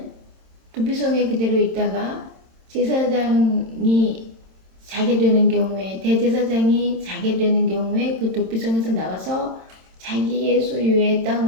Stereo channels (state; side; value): late; left; 27 ms